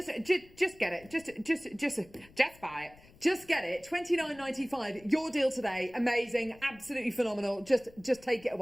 get it. Just buy it. Just get it. $29.95. Your deal today. Amazing. Absolutely phenomenal. Just take it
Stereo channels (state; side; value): noise; left; rumble, 24 dB below the sound